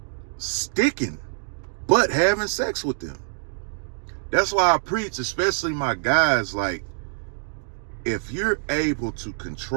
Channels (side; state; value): left; silent; digital silence